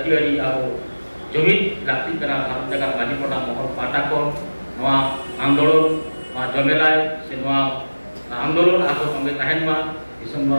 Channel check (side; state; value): both; inverted; correlation -1.00